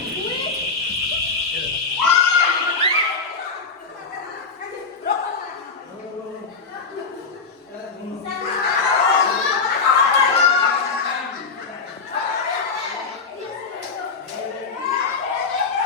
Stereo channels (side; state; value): right; quieter; 4.7 dB